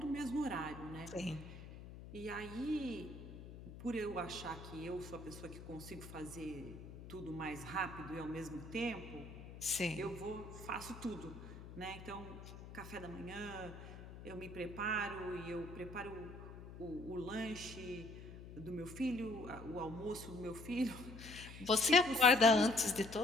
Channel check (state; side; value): noise; left; hum, 13 dB below the sound